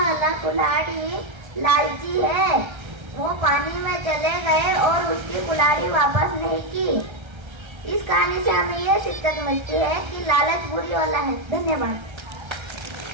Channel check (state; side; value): late; left; 1.3 ms